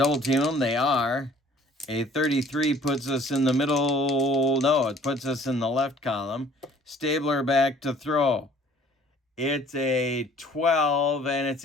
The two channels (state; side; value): normal; both; correlation 0.54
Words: team him. They are. A 33 puts us in the middle. No, it puts us in the left column. Stabler back to throw. It's a 12 and it's